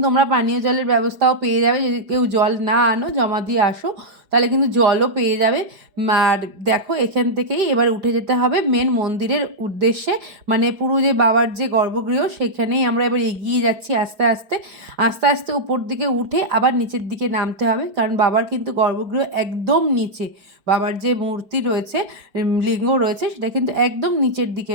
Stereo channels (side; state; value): left; late; 5.1 ms